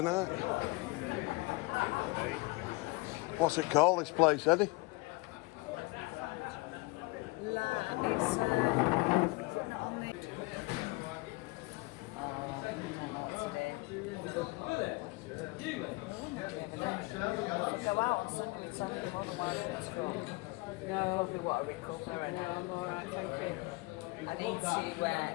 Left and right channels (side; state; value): right; quieter; 25.0 dB